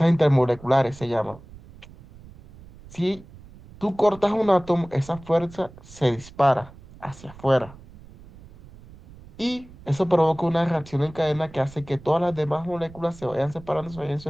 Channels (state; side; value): noise; right; rumble, 20 dB below the sound